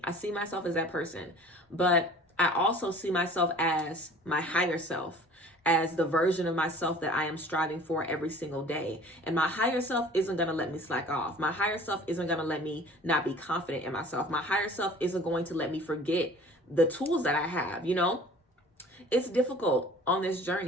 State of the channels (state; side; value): normal; both; correlation 0.47